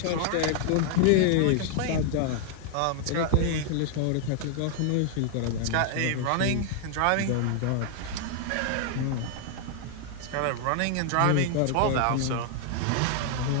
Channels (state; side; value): different; both; correlation -0.01